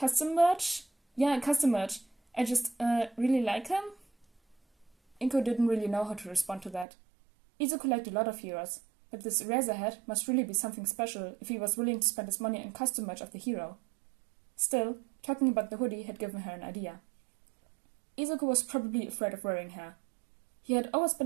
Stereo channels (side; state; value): left; drops out; at 6.9 s